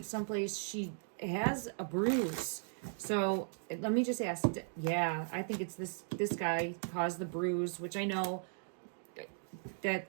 someplace. She has a bruise. So, let me just ask. Yeah, I think it's this guy caused the bruise, which I know...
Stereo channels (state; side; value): silent; left; digital silence